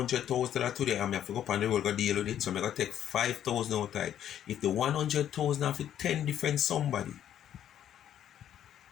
today, and I have to go up on the road go deal with it, so I'm going to take 5,000 out of it. If the 100,000 have 10 different somebody,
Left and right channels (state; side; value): quieter; right; 10.5 dB